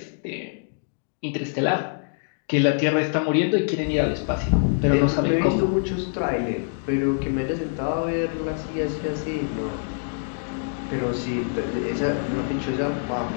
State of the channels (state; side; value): silent; right; digital silence